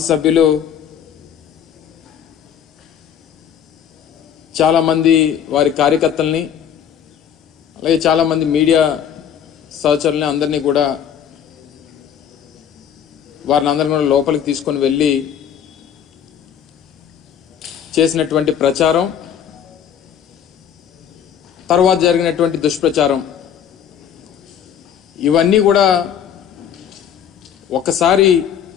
చాలామంది వారి కార్యకర్తల్ని అలాగే చాలామంది మీడియా సహచరుల్ని అందరినీ కూడా వారిని అందరినీ కూడా లోపలికి తీసుకొని వెళ్ళి చేసినటువంటి ప్రచారం, తర్వాత జరిగినటువంటి దుష్ప్రచారం, ఇవన్నీ కూడా ఒక్కసారి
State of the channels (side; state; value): right; quieter; 8.8 dB